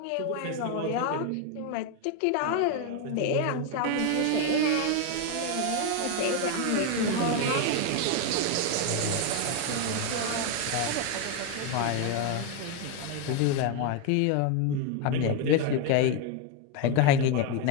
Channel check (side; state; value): both; different; correlation 0.01